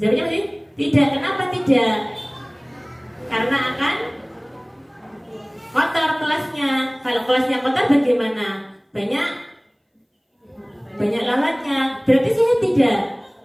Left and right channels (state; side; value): identical; both; correlation 1.00